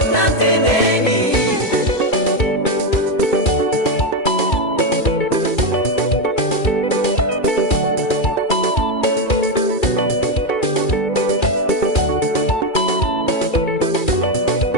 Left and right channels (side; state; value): right; late; 2.4 ms